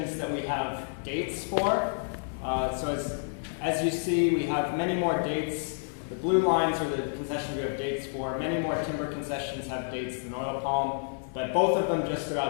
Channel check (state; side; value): silent; right; 58 dB below the other